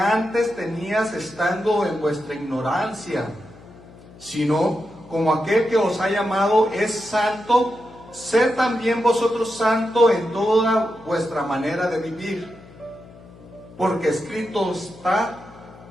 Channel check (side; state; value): left; noise; hum, 21 dB below the sound